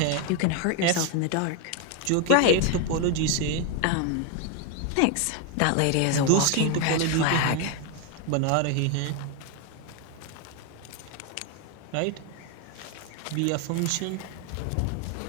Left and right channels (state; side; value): different; both; correlation 0.01